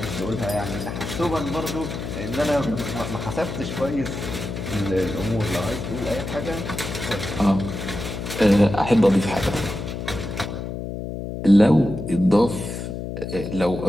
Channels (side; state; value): left; noise; hum, 6 dB below the sound